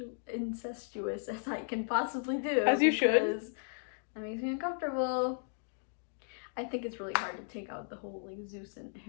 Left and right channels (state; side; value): silent; right; digital silence